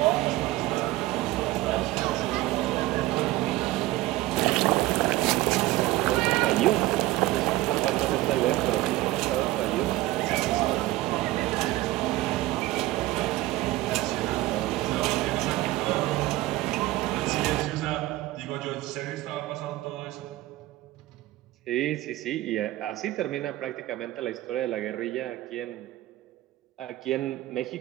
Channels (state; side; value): quieter; left; 17.4 dB